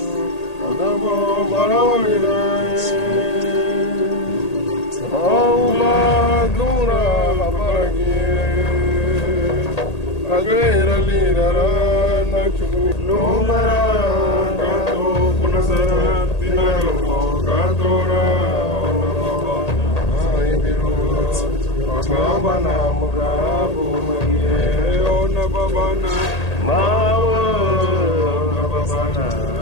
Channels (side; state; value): right; late; 1.8 ms